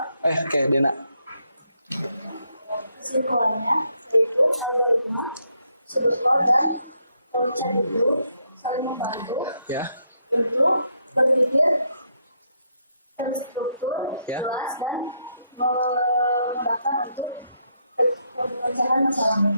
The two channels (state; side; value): inverted; both; correlation -0.77